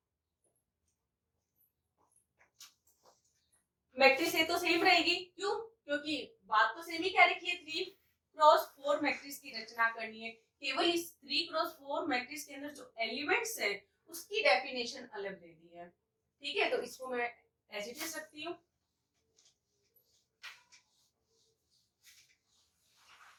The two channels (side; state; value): both; identical; correlation 1.00